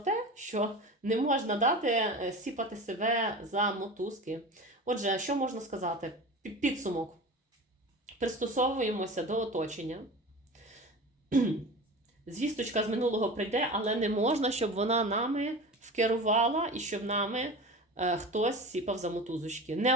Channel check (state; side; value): normal; both; correlation 0.33